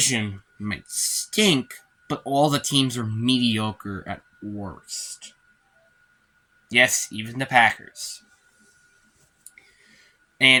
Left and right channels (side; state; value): both; identical; correlation 1.00